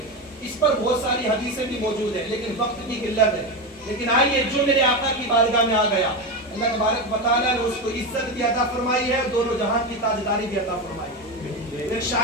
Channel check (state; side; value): normal; both; correlation 0.16